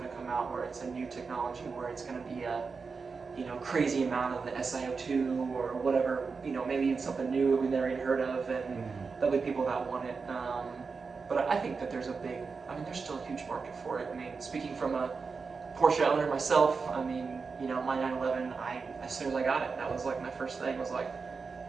to come out where it's a new technology, where it's going to be a, you know, crazy amount of the SiO2 or whatever. You know, maybe even something new we've never even heard of, and there'll be people that want it. But I think that there's still a huge market for it. I mean, speaking from a Porsche owner myself, I mean, you know, my 911, as soon as I got it, that was like my first thing, was like,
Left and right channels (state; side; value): quieter; left; 4.9 dB